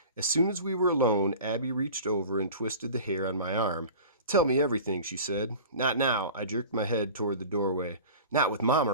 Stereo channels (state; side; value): inverted; both; correlation -0.38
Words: As soon as we were alone, Abby reached over and twisted the hair on my arm. Tell me everything, she said. Not now. I jerked my head toward the doorway. Not with Mom